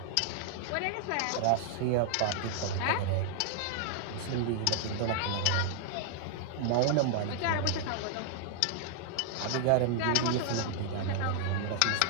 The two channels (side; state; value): both; different; correlation -0.01